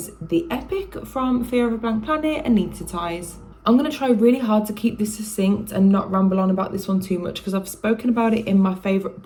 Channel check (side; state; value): both; identical; correlation 1.00